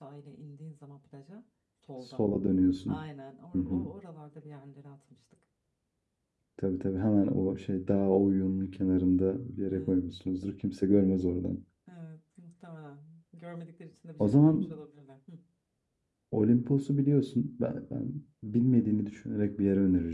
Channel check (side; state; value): both; identical; correlation 1.00